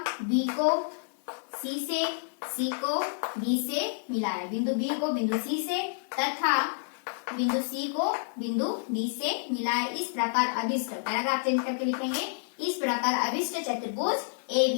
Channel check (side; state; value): right; silent; 58 dB below the other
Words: बी को सी से, सी को बी से मिलाया, बिंदु बी को बिंदु सी से तथा बिंदु सी को बिंदु डी से मिलाया। इस प्रकार अभिष्ट, पैराग्राफ चेंज करके लिखेंगे, इस प्रकार अभिष्ट चतुर्भुज ए